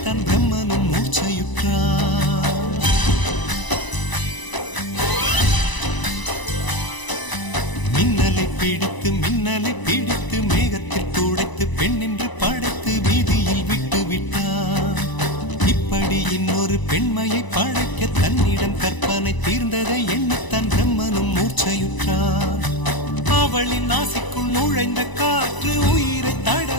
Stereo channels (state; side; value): late; right; 1.0 ms